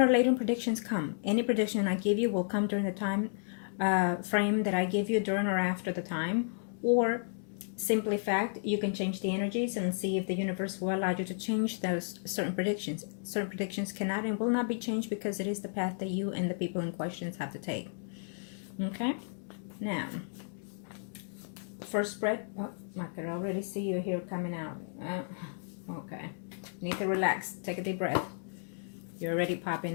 or later predictions come. Any prediction I give you will come during the time frame that I give you during or after the time, or simply fact, you can change the energies and see if the universe will allow you to change those certain predictions. Certain predictions cannot and will not be changed because it is the path that you and the people in questions have to take. Okay, now first spread. Oh, I can already see you here coming out. Okay, need to relax, take a deep breath. You're already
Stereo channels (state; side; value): silent; right; digital silence